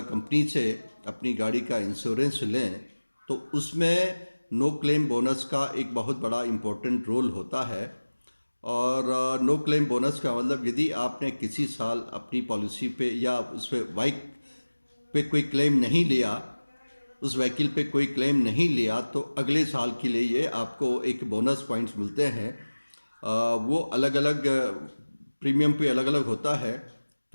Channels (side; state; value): both; inverted; correlation -1.00